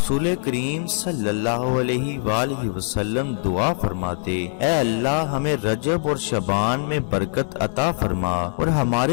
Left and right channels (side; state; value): right; silent; digital silence